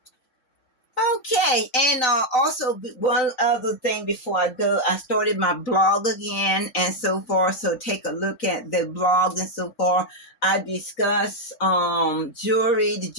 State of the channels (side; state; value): right; late; 4.0 ms